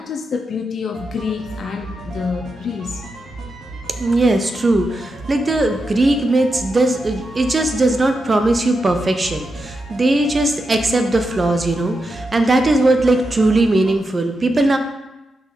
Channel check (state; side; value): normal; both; correlation 0.87